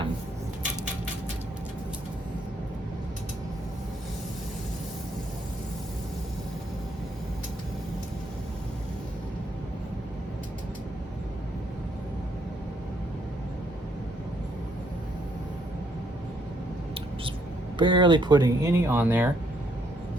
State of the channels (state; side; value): normal; both; correlation 0.71